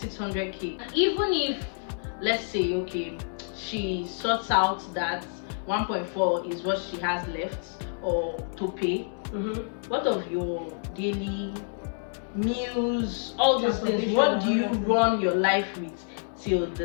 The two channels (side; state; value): right; silent; 59 dB below the other